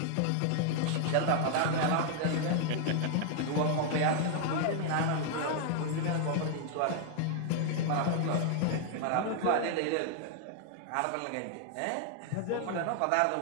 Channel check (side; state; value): both; different; correlation 0.00